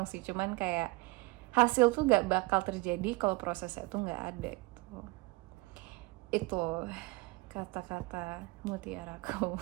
sih, cuman kayak hasil tuh nggak bakal terjadi kalau prosesnya tuh nggak ada gitu. Itu kata-kata mutiaraku.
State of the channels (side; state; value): left; quieter; 24.3 dB